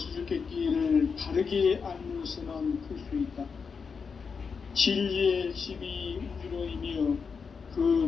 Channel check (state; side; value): quieter; right; 5.6 dB